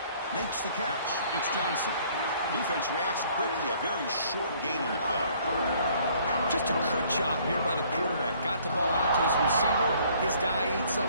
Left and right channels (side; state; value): both; inverted; correlation -0.59